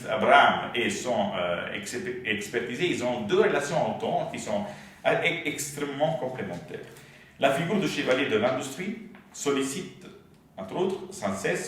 Abraham et son expertisé, ils ont deux relations au temps qui sont extrêmement complémentaires. La figure du chevalier de l'industrie sollicite, entre autres, sans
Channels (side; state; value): both; identical; correlation 1.00